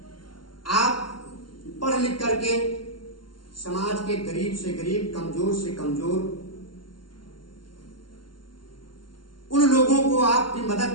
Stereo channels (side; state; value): right; late; 0.72 ms